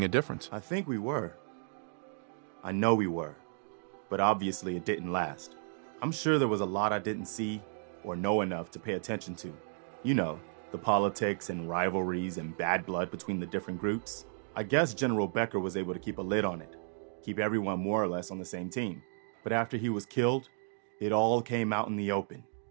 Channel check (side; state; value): left; silent; digital silence